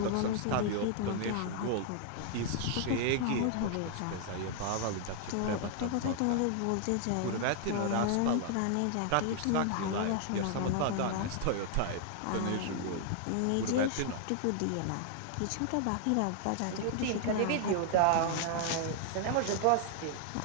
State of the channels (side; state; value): both; different; correlation 0.00